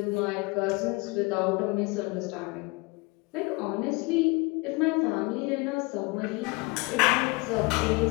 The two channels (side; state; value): right; quieter; 25.9 dB